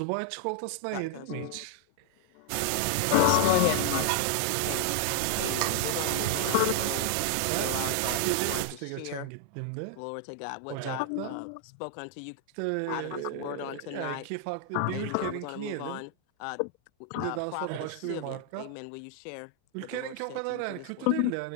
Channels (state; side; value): different; both; correlation 0.00